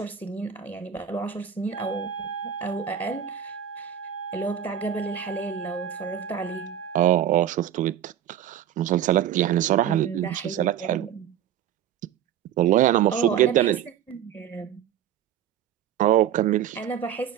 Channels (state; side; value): quieter; left; 9.9 dB